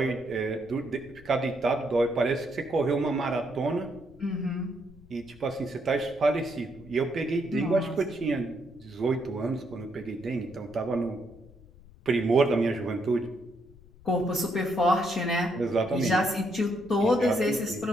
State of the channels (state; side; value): noise; left; rumble, 23 dB below the sound